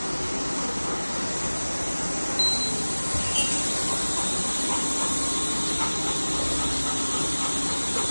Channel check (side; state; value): both; inverted; correlation -1.00